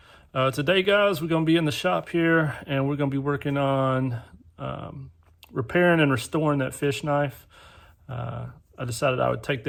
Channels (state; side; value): identical; both; correlation 1.00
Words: Today, guys, we're going to be in the shop here, and we're going to be working on repairing and restoring that fish knife. I decided I would take